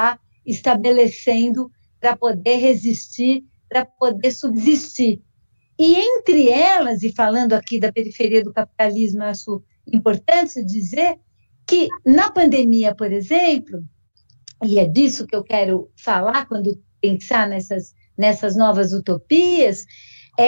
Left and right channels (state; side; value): inverted; both; correlation -1.00